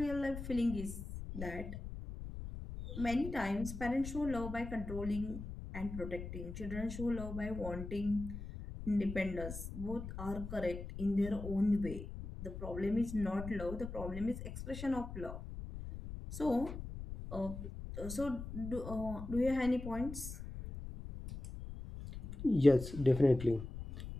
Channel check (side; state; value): left; noise; rumble, 9 dB below the sound